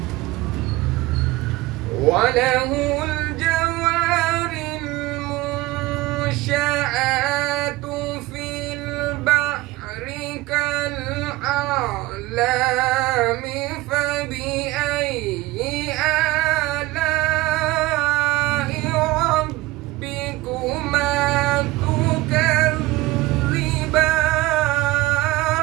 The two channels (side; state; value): left; quieter; 18.5 dB